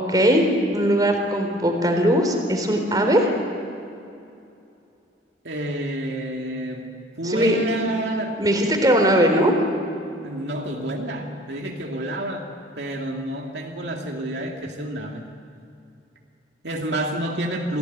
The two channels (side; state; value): both; normal; correlation 0.50